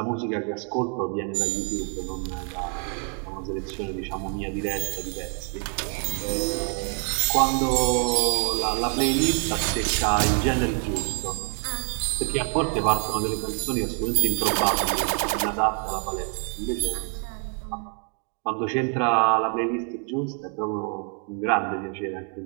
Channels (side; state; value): left; quieter; 38.7 dB